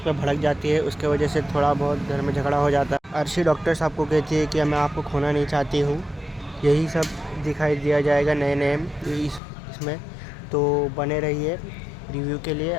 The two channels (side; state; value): right; drops out; at 9.4 s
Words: पर भड़क जाती है, उसके वजह से थोड़ा बहुत घर में झगड़ा हो जाता है। अर्शी डॉक्टर साहब को कहती है कि मैं आपको खोना नहीं चाहती हूँ। यही सब दिखाई दिया जाएगा नए नए इसमें, तो बने रहिए। रिव्यू के लिए